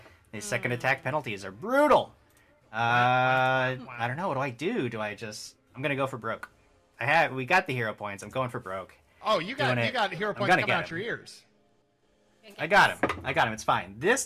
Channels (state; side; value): identical; both; correlation 1.00